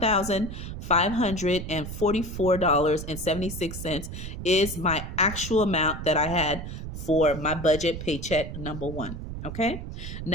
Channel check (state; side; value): noise; right; rumble, 8 dB below the sound